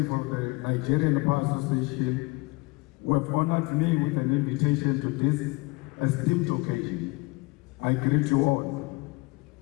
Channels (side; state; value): right; quieter; 25.0 dB